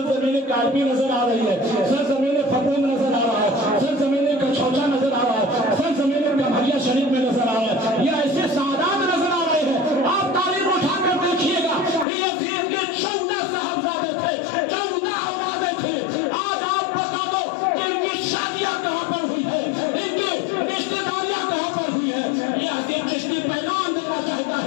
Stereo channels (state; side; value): drops out; right; at 12.1 s